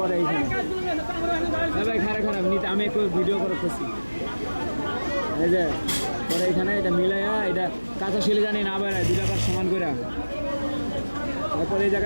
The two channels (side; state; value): both; inverted; correlation -1.00